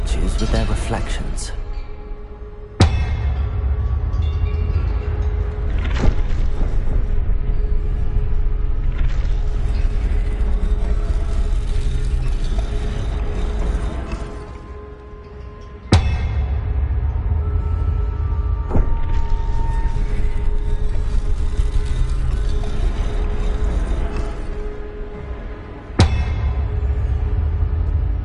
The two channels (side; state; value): both; identical; correlation 1.00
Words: with their reflections.